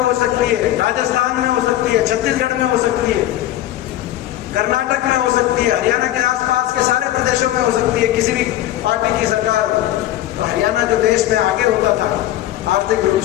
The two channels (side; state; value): right; quieter; 13.9 dB